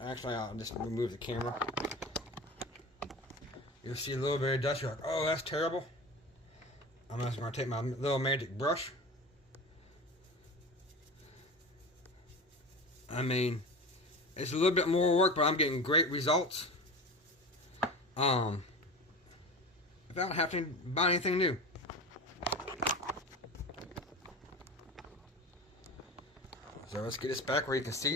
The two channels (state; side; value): normal; both; correlation 0.31